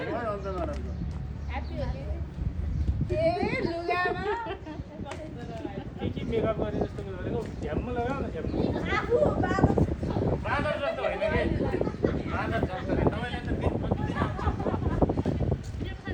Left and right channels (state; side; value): identical; both; correlation 1.00